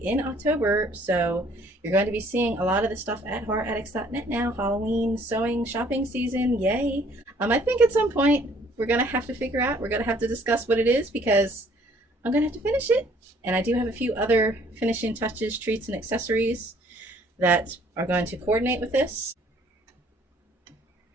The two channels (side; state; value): both; normal; correlation 0.60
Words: in October, so you're going to be seeing a lot of this stuff at horroraddicts.net now. Halloween sewing shopping season, yay. I think at some point we're gonna have to figure out, we're gonna have to discuss what it is, because I'm gonna have to finish it, and I do have a few other finishing touches, treats, and accessories that are going to coordinate with this.